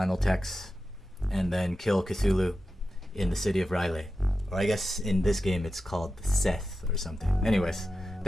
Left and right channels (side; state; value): both; normal; correlation 0.92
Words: text and then kill Cthulhu in the city of Riley. Or I guess in this game it's called Seth or something. Anyways,